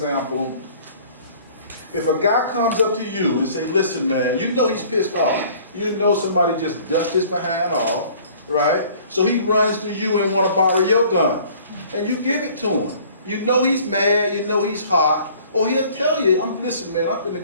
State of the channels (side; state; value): both; inverted; correlation -0.52